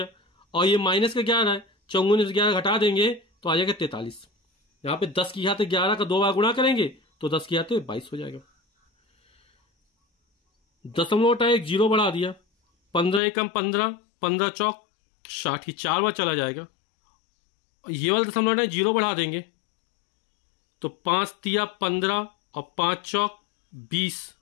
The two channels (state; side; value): drops out; right; at 13.2 s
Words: और ये माइनस का 11 है, 54 में 11 घटा देंगे तो आ जाएगा 43। यहां पे 10⁻11 का 2 बार गुणा करेंगे तो 10⁻22 हो जाएगा। दशमलव हटा एक जीरो बढ़ा दिया, 15 एकम 15, 15 चौक 60, 4 बार चला जाएगा। ये वाला दशमलव हटा जीरो बढ़ा देंगे तो 5 तिया 15 और 5 चौक 20